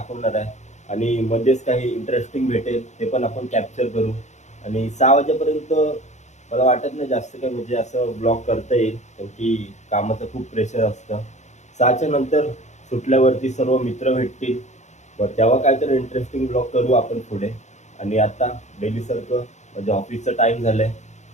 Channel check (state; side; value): late; right; 0.34 ms